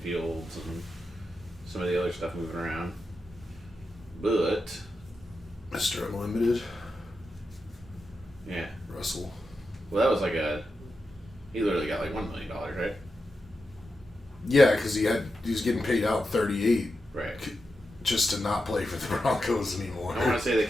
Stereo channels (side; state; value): both; normal; correlation 0.88